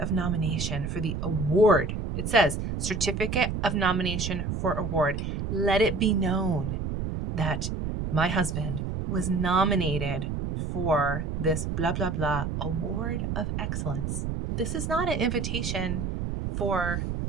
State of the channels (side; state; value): right; noise; rumble, 3 dB below the sound